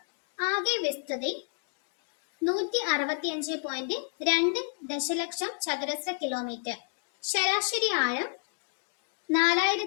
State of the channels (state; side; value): silent; right; 56 dB below the other